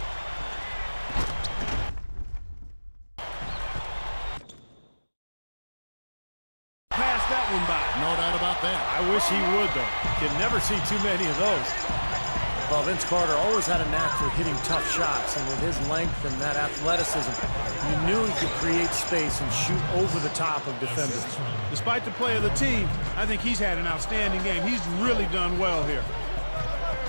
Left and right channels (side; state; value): both; inverted; correlation -1.00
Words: Pass that one by. No doubt about that. I wish he would, though. Can never see too many of those. Well, Vince Carter always had a knack for hitting tough shots, and with his length and that athleticism, you knew he could create space and shoot over the top of defenders. Despite the play of the team, I think he's had an outstanding game. He's really done well here.